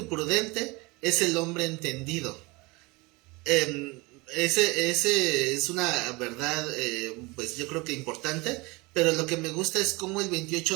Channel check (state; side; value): quieter; left; 24.9 dB